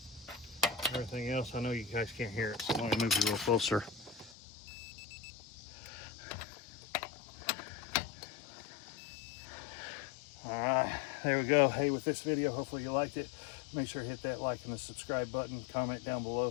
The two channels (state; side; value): drops out; right; at 4.4 s